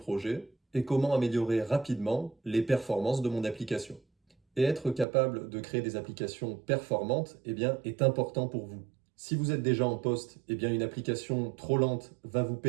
Et comment améliorer rapidement les performances de mon application? Et être capable de créer des applications performantes est important pour vous. Si vous êtes déjà en poste, une application trop lente va vous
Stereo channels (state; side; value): drops out; left; at 5.1 s